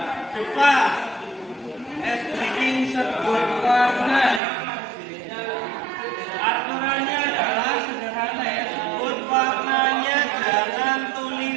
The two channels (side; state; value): left; drops out; at 4.4 s